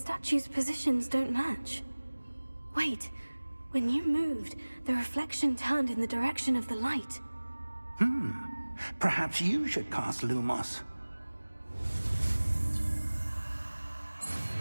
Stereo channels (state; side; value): inverted; both; correlation -1.00